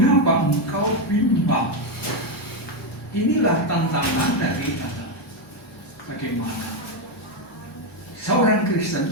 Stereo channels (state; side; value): normal; both; correlation 0.06